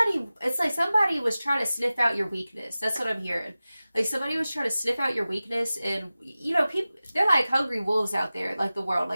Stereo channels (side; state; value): both; inverted; correlation -0.96